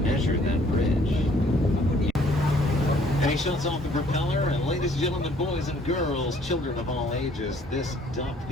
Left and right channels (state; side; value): normal; both; correlation 0.60